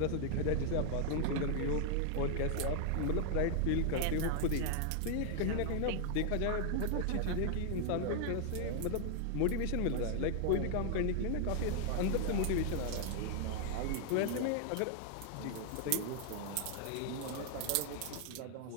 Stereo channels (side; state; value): both; different; correlation 0.00